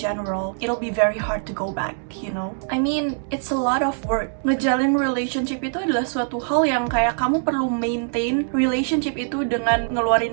general, it'll be very hard to go back, you know? I mean, it's a lot of work. Ngejalin relationship itu adalah suatu hal yang kayak kamu perlu maintain relationship itu dengan ngeluarin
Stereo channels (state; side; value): silent; left; digital silence